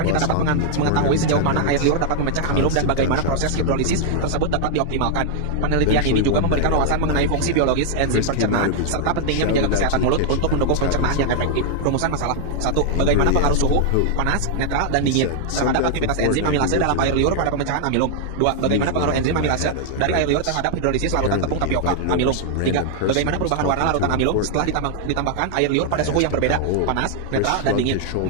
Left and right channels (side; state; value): both; different; correlation 0.00